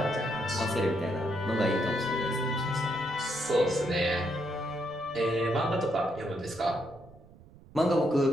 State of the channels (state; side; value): noise; right; rumble, 22 dB below the sound